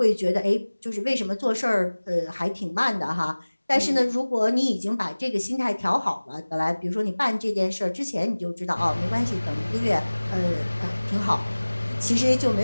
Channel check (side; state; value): both; inverted; correlation -1.00